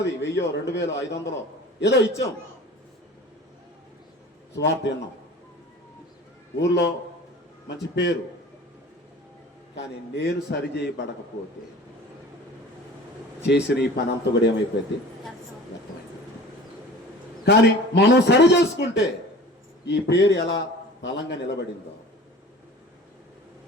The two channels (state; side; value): normal; both; correlation 0.42